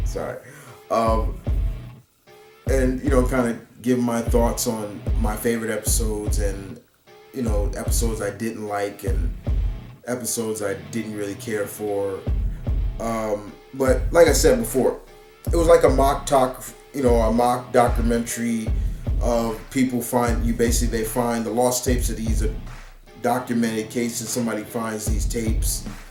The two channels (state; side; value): identical; both; correlation 1.00